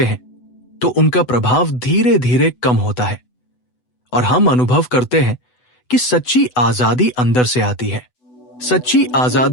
हैं, तो उनका प्रभाव धीरे धीरे कम होता है और हम अनुभव करते हैं कि सच्ची आजादी अंदर से आती है। सच्ची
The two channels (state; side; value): late; right; 8.0 ms